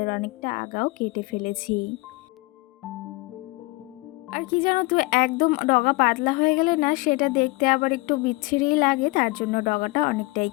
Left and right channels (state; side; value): quieter; right; 23.9 dB